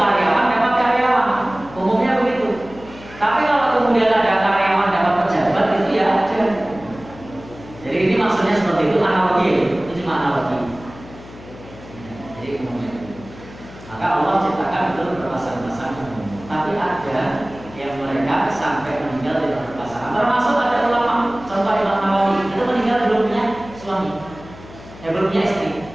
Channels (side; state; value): left; noise; hum, 18 dB below the sound